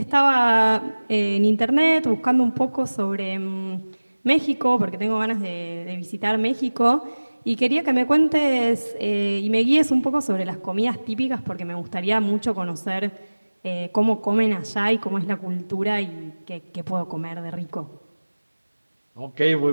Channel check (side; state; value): both; inverted; correlation -1.00